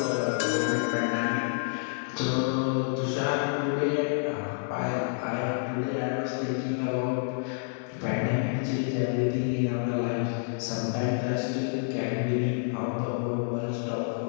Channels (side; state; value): right; silent; digital silence